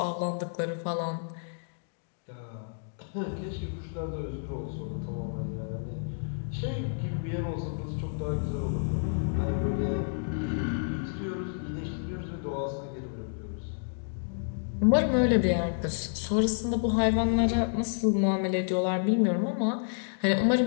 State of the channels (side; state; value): right; silent; digital silence